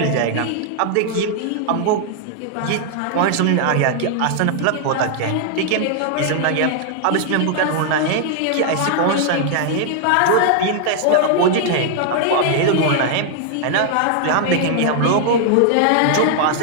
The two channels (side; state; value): both; different; correlation 0.00